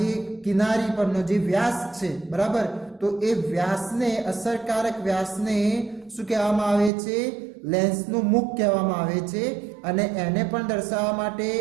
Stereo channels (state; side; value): drops out; left; at 6.9 s